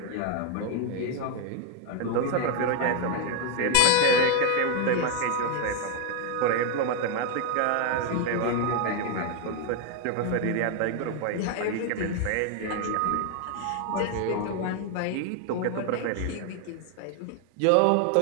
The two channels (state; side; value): different; both; correlation 0.00